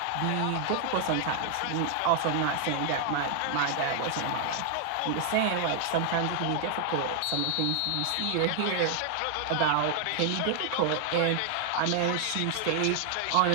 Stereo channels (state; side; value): different; both; correlation 0.00